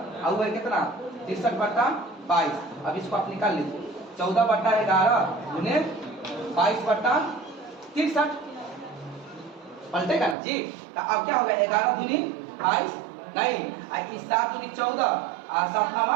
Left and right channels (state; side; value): drops out; left; at 10.4 s